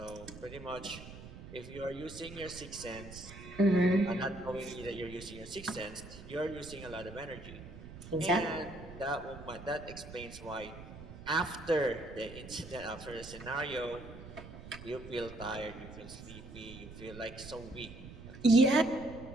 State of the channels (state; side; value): noise; right; rumble, 14 dB below the sound